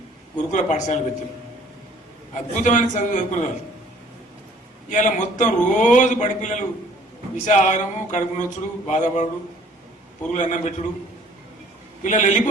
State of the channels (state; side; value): normal; both; correlation 0.55